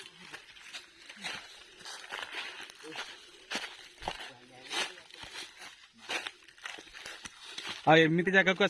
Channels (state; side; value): identical; both; correlation 1.00